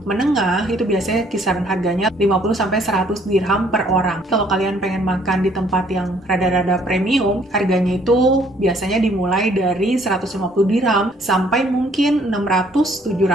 menengah, itu biasanya kisaran harganya 50-100 dirham per orang. Kalau kalian pengen makan di tempat yang rada-rada premium, harganya itu biasanya dimulai dari 150 dirham sampai mungkin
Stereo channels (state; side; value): normal; both; correlation 0.62